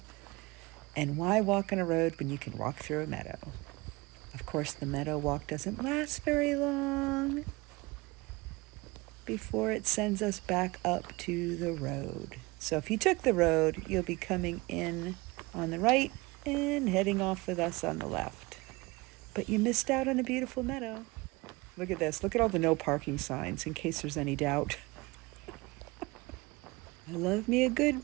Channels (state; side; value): quieter; left; 23.5 dB